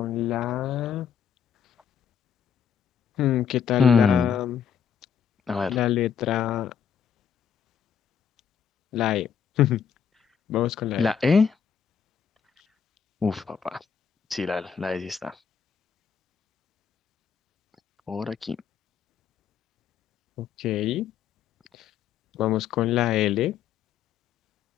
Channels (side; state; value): right; quieter; 7.7 dB